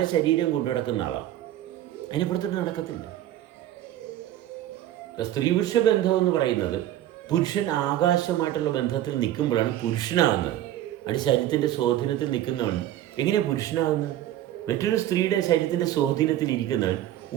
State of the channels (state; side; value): quieter; left; 12.9 dB